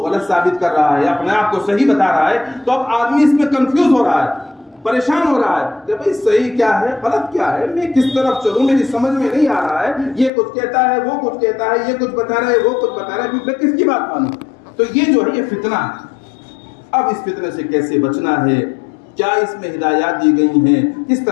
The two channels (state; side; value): drops out; right; at 10.3 s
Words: غلط ثابت کر رہا ہے، اپنے آپ کو صحیح بتا رہا ہے، تو اب آدمی اس میں کنفیوز ہو رہا ہے، پریشان ہو رہا ہے کہ بھئی صحیح کیا ہے غلط کیا ہے، میں کس طرف چلوں، میری سمجھ میں نہیں آ رہا ہے. یہ کچھ کہتا ہے وہ کچھ کہتا ہے، یہ کچھ بتا رہا ہے وہ کچھ بتا رہا ہے، میں کس کی بات مانوں؟ تو یہ جو ہے یہ فتنہ ہے. اب اس فتنے سے کیسے بچنا ہے، کیا اس میں ہدایات دی گئی ہیں، کس